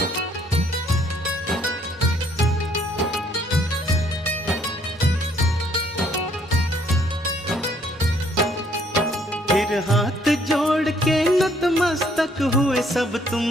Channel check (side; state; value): both; normal; correlation 0.65